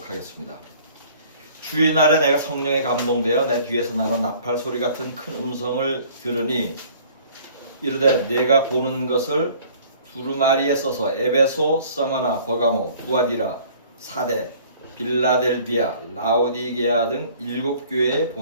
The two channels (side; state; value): both; inverted; correlation -0.53